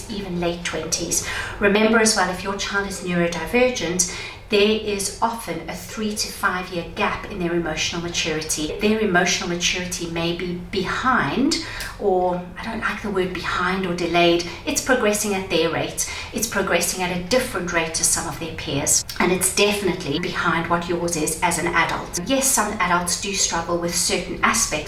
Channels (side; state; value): both; identical; correlation 1.00